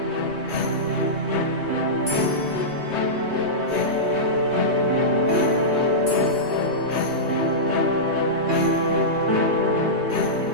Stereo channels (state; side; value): late; left; 3.2 ms